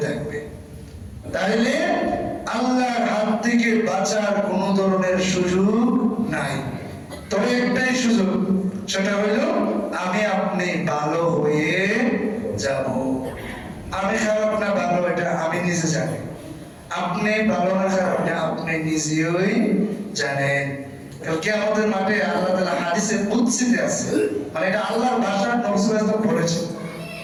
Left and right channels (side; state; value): both; identical; correlation 1.00